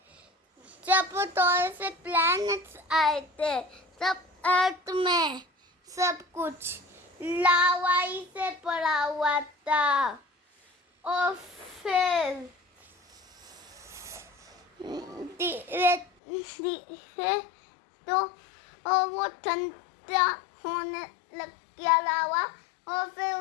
जब थोड़े से प्लैनेट्स आए थे तब अर्थ में सब कुछ लावाई से पड़ा हुआ था। और फिर धीरे तो वो ठंडा होने लग गया लावा। और फिर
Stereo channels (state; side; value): drops out; right; at 16.1 s